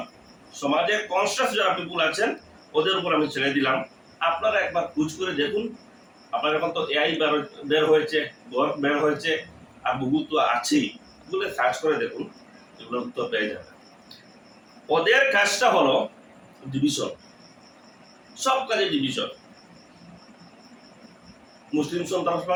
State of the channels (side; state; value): both; identical; correlation 1.00